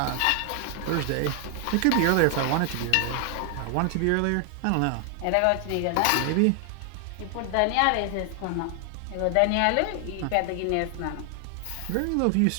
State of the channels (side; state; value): both; different; correlation 0.00